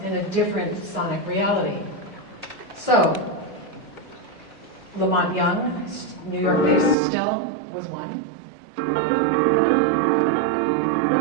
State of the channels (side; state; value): left; drops out; at 7.0 s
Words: in a different sonic reality. So, Lamont Young, New York-based still, was one.